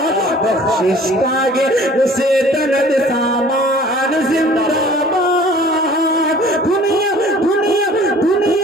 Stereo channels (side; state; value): both; normal; correlation 0.49